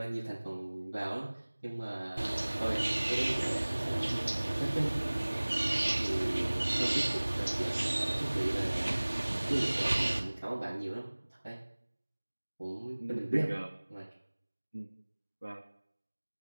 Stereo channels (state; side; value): inverted; both; correlation -1.00